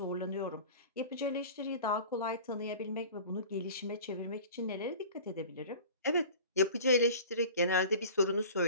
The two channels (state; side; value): inverted; both; correlation -0.41